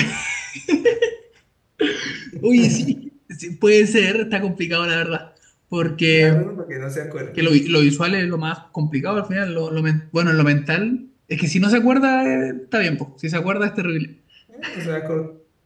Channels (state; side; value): identical; both; correlation 1.00